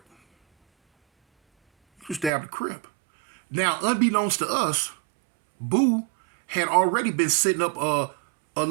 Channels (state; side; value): drops out; left; at 2.3 s